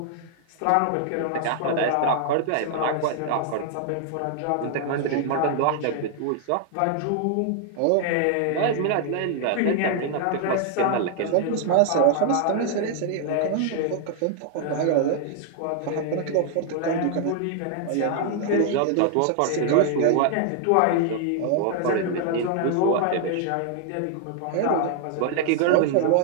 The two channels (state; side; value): different; both; correlation 0.00